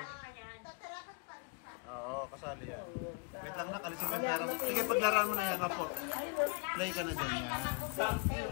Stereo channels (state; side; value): quieter; right; 34.0 dB